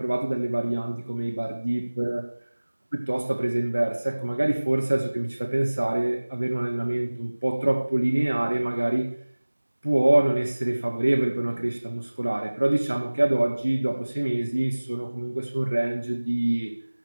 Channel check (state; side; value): inverted; both; correlation -1.00